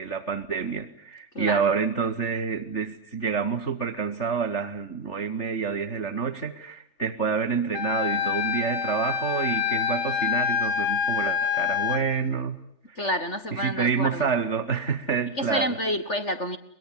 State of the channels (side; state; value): right; late; 3.4 ms